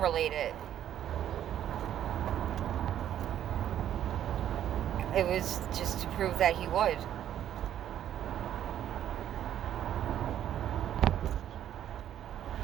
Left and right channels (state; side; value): quieter; left; 10.8 dB